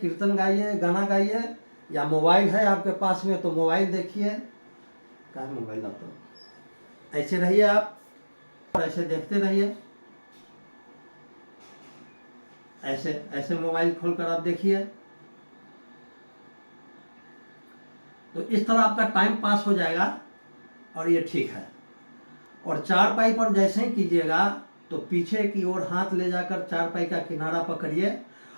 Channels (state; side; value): inverted; both; correlation -1.00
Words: गाइए, गाना गाइए, या मोबाइल है आपके पास में तो मोबाइल देखिए। क्या मोबाइल आप तो ऐसे रहिए आप और ऐसे देखते रहिए, ऐसे ऐसे मोबाइल खोलकर आप देखिए। तो इस तरह आपका टाइम पास हो जाएगा और ये ठीक है। और चारपाई पर जैसे ही कीजिएगा तो पीछे की ओर हाथ ले जाकर चारपाई का किनारा पकड़िए